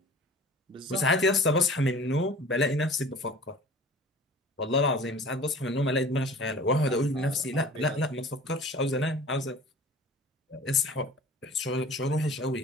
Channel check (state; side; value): normal; both; correlation 0.44